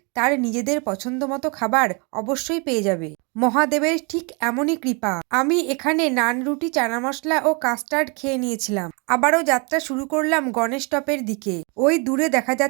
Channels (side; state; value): left; quieter; 32.7 dB